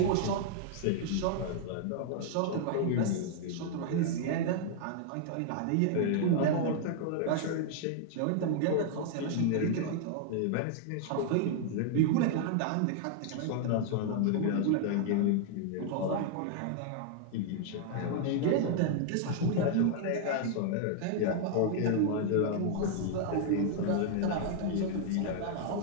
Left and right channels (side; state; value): both; different; correlation -0.01